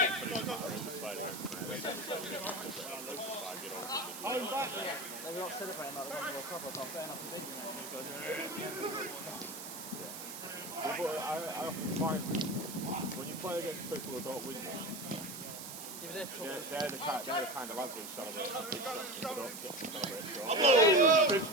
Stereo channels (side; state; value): right; noise; hiss, 9 dB below the sound